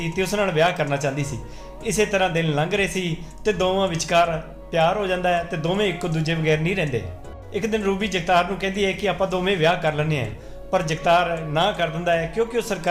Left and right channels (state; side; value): identical; both; correlation 1.00